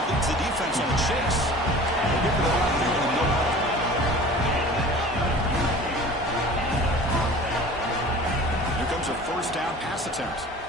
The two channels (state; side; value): normal; both; correlation 0.42